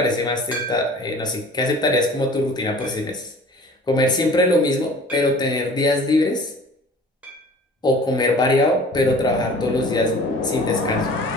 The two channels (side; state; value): both; normal; correlation 0.46